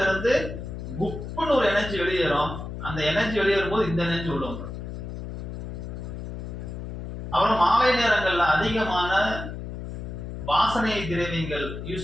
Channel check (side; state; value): left; noise; hum, 8 dB below the sound